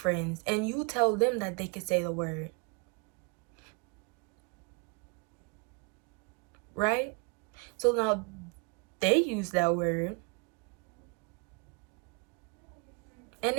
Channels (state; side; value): quieter; left; 34.1 dB